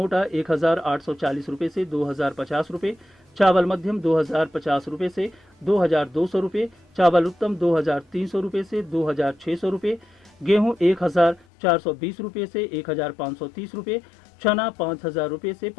1840 रुपए से 2050 रुपए, चावल मध्यम 2050 रुपए से 2200 रुपए, चावल उत्तम 2300 रुपए से 2600 रुपए, गेहूं 1420 रुपए से 1530 रुपए, चना 5000 रुपए से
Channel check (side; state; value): right; drops out; at 11.5 s